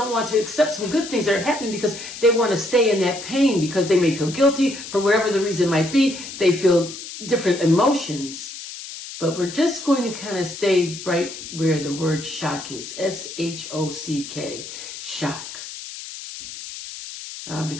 want to accept some good things that are happening because they want to stay in that pain because they may feel guilty for whatever the reason might be. They feel different emotions. But we're just going to kind of stay right where the word shock is. S-H-O-C-K. Shock.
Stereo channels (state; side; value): noise; left; hiss, 11 dB below the sound